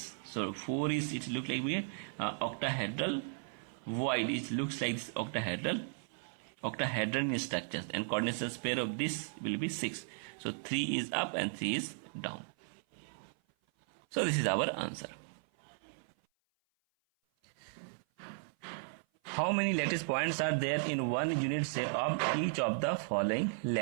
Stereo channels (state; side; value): silent; left; 54 dB below the other